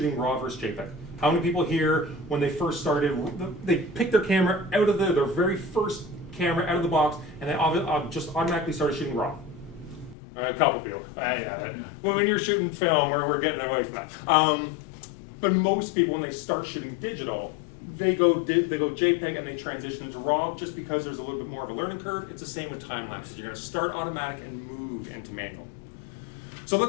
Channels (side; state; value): right; drops out; at 10.2 s